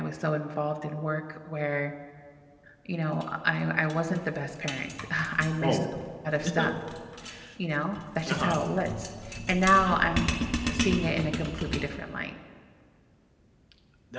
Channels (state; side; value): identical; both; correlation 1.00